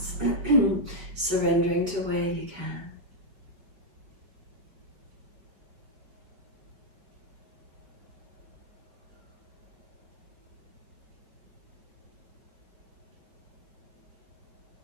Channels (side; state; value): left; late; 5.4 ms